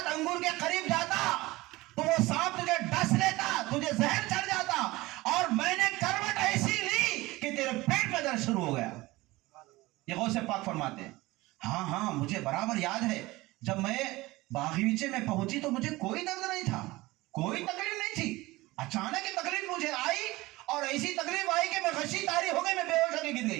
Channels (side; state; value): left; quieter; 20.0 dB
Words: انگور کے قریب جاتا تو وہ سانپ تجھے ڈس لیتا، تجھے زہر چڑھ جاتا، اور میں نے کروٹ ایسی لی کہ تیرے پیٹ میں درد شروع ہو گیا. یہ غوث پاک فرماتے ہیں. ہاں ہاں مجھے برابر یاد ہے جب میں باغیچے میں پہنچی تو مجھے کوئی درد نہیں تھا، کوئی تکلیف نہیں تھی. اچانک یہ تکلیف مجھے آئی اور ایسی تکلیف آئی کہ میں غشی طاری ہو گئی، میں بے ہوش ہو کے گر